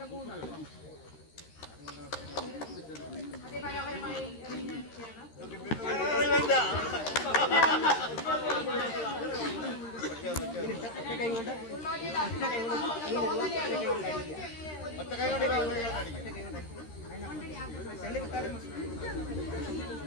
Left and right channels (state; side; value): late; right; 13 ms